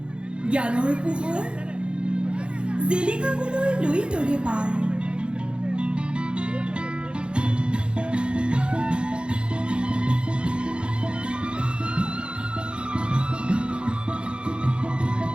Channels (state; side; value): late; left; 0.055 ms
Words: জ্ঞানৰ পোহৰ জিলিকাবলৈ লৈ তৰে পাৰ।